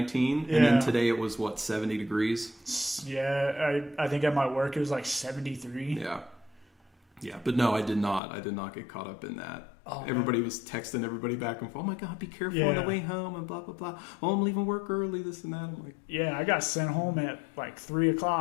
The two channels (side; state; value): right; drops out; at 8.2 s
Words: Yeah. And then today it was, 70 degrees? Yeah, I think at my work it was like 73. Yeah. Yeah, but no, I did not. I did not get caught up in that. Oh, everybody man. was texting everybody back and forth. Oh my God, be careful on the way home and blah, blah, blah. Oh, I'm leaving work early, this and that. I'm like... Yeah, I got sent home at like 3